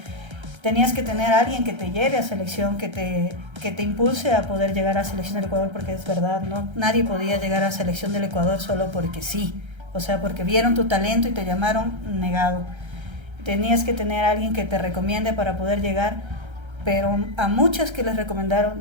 tenías que tener a alguien que te lleve a selección, que te impulse a poder llegar a selección del Ecuador, porque es verdad, no, nadie podía llegar a selección del Ecuador solo porque sí. O sea, porque vieron tu talento y te llamaron, negado. Tenías que tener a alguien que te recomiende para poder llegar, pero a muchas que les recomendaron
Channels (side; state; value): left; late; 1.3 ms